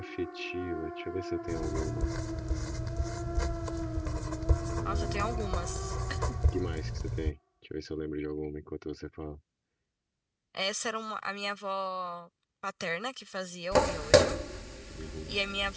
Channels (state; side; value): identical; both; correlation 1.00